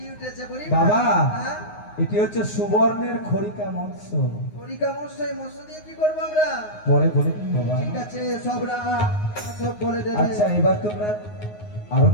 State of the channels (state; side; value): late; right; 9.6 ms